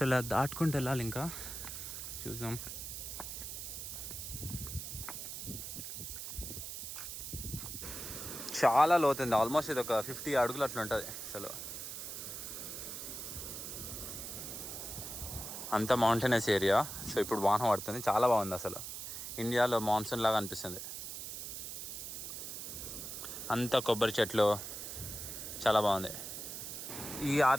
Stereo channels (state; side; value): noise; right; hiss, 7 dB below the sound